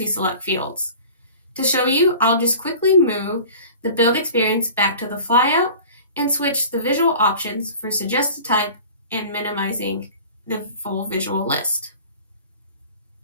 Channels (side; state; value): both; inverted; correlation -0.42